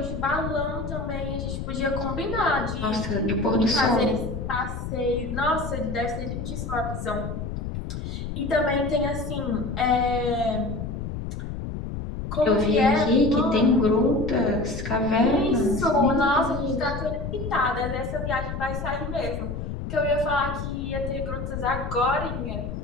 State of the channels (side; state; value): left; noise; rumble, 5 dB below the sound